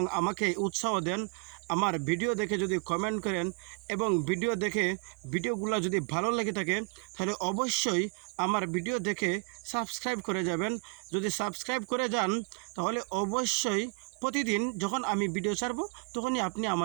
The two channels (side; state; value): left; quieter; 35.3 dB